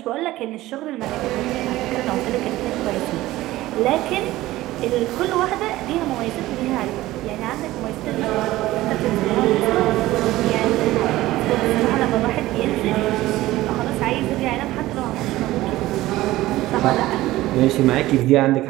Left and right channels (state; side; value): quieter; left; 16.8 dB